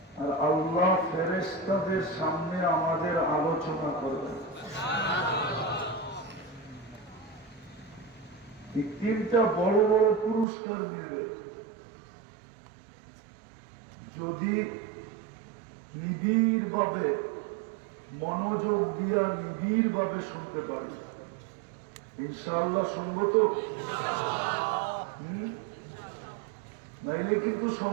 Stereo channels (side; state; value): left; drops out; at 10.5 s